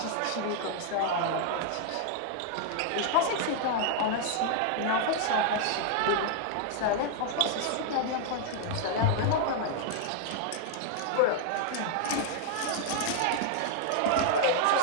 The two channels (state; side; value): different; both; correlation -0.01